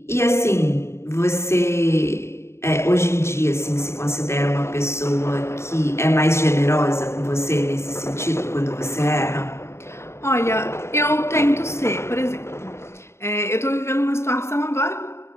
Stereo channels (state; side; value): late; right; 0.13 ms